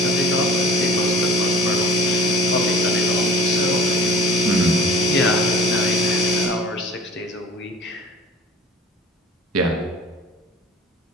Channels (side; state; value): both; normal; correlation 0.46